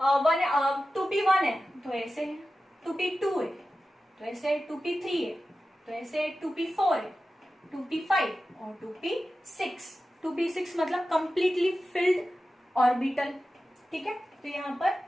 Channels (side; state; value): both; normal; correlation 0.94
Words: 2p1 है तो ऐसे है, 2p2 है तो ऐसे, 2p3 है तो ऐसे, 2p4 है, 2p5 और 2p6। 2p6 मतलब कंप्लीटली फिल्ड ऑर्बिटल, ठीक है। तो यहाँ